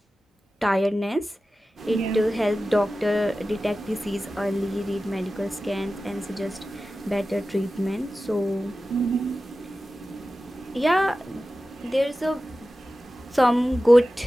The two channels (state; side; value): normal; both; correlation 0.95